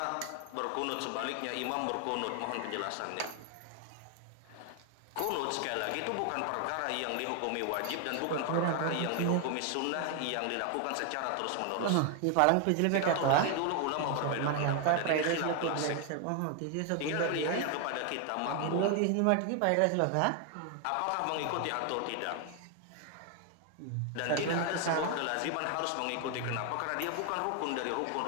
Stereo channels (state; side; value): different; both; correlation 0.00